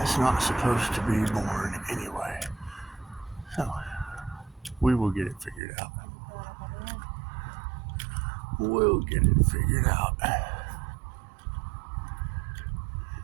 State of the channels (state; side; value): drops out; left; at 5.6 s